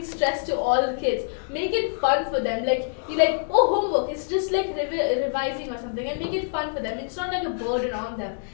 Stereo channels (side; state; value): right; silent; digital silence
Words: stress to all the kids. Make it fun for them. Like you like, oh, homework. It's just like revising or something, and make it fun for them. It's not like a burden on them.